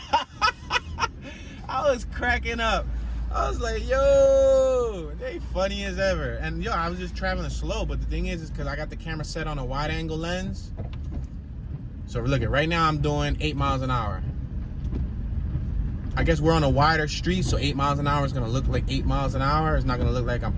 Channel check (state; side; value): identical; both; correlation 1.00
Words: I was cracking up. I was like, yo, they funny as ever. And yo, I was just traveling slow. But the thing is because I got the camera set on a wide angle lens. So look at right now, I'm doing 8 miles an hour. I guess we're on a wider street, so 8 miles an hour is gonna look like 8 miles an hour. It's not gonna look like I'm